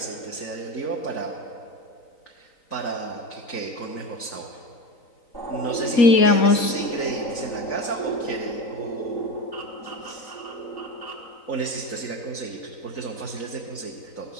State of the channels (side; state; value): right; late; 3.9 ms